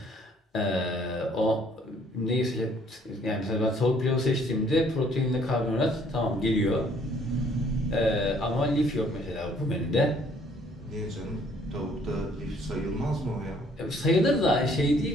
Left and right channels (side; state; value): both; normal; correlation 0.62